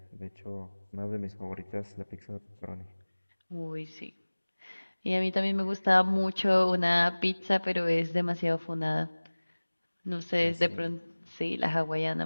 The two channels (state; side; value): inverted; both; correlation -1.00